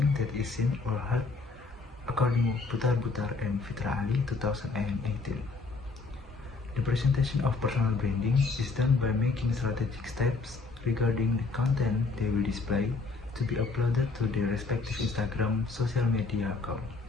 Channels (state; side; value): quieter; right; 4.1 dB